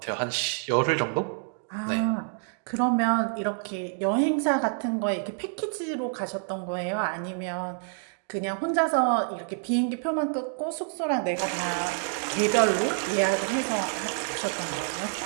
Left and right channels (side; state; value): left; silent; 59 dB below the other